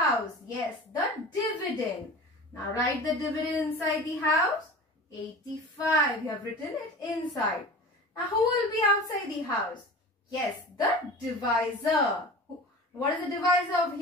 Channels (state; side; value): normal; both; correlation 0.36